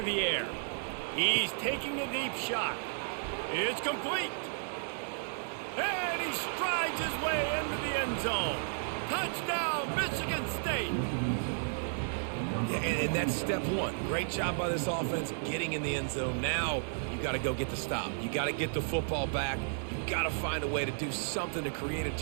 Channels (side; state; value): left; silent; digital silence